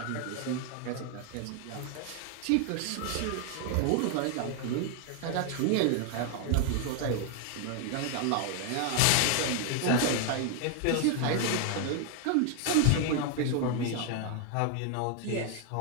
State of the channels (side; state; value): both; different; correlation 0.00